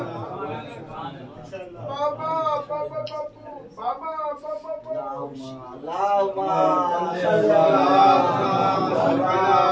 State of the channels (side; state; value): both; identical; correlation 1.00